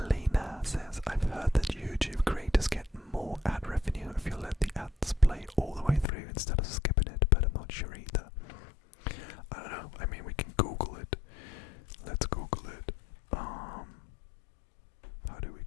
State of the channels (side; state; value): right; drops out; at 6.1 s